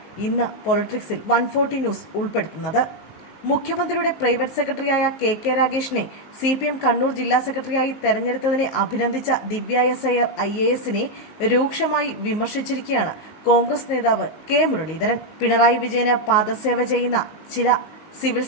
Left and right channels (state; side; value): late; right; 19 ms